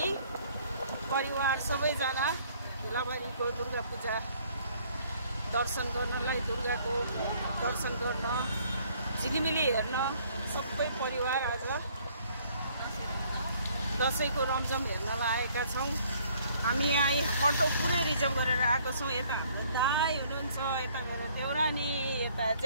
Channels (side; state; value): both; inverted; correlation -0.61